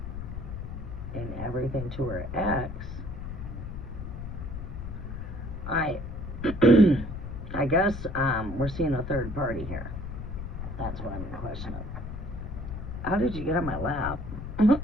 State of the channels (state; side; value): noise; left; rumble, 7 dB below the sound